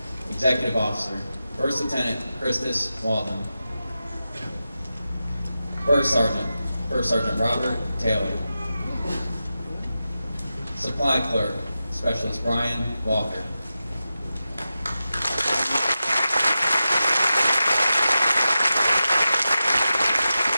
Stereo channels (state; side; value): inverted; both; correlation -0.92